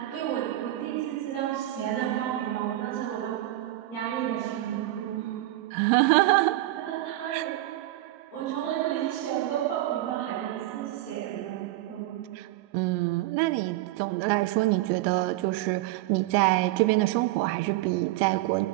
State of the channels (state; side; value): quieter; left; 16.3 dB